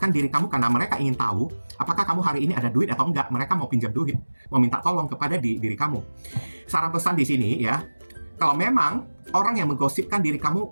diri kamu karena mereka ingin tahu apakah kamu hari ini ada duit atau enggak. Mereka mau pinjam duit, mau minta tolong kepada diri kamu. Saran pesan di sini ya, kalau memang orang yang menggosipkan diri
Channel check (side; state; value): both; inverted; correlation -1.00